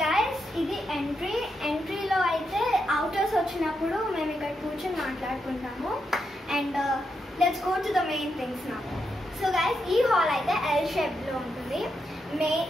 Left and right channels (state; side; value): normal; both; correlation 0.83